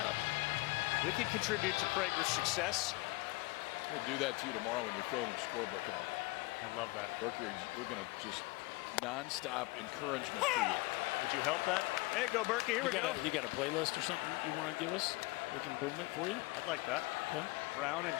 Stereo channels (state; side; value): quieter; right; 23.1 dB